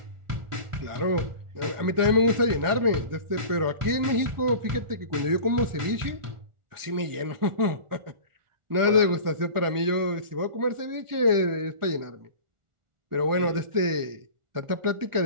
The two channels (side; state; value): left; late; 1.4 ms